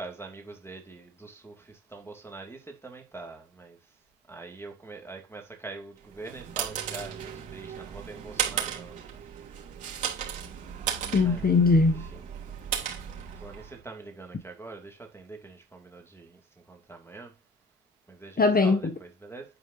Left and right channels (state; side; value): normal; both; correlation 0.43